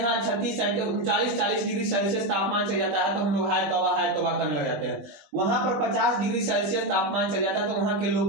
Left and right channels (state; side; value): late; left; 20 ms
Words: 39-40 डिग्री सेल्सियस तापमान चल जाता है तो हम लोग हाय तौबा करने लग जाते हैं। वहां पर 50 डिग्री सेल्सियस तापमान चल जाता है तो वहां के